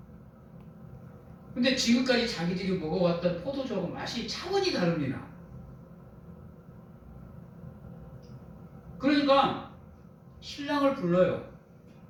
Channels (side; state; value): both; identical; correlation 1.00